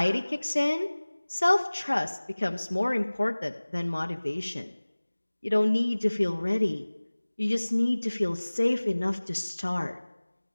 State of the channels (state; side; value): inverted; both; correlation -1.00